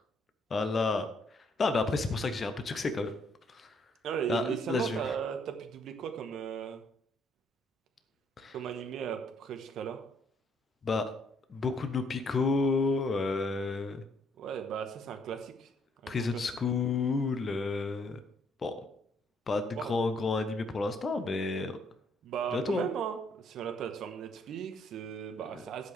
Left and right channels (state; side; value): normal; both; correlation 0.68